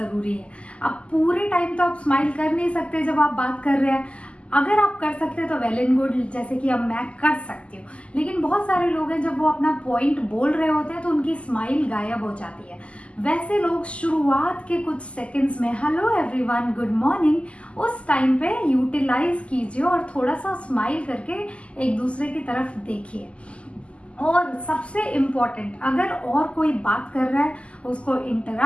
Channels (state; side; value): late; right; 0.057 ms